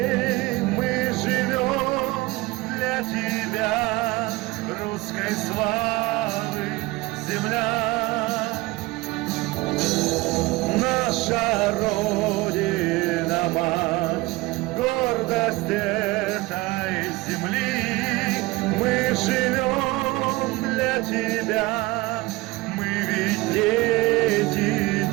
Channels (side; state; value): left; quieter; 21.3 dB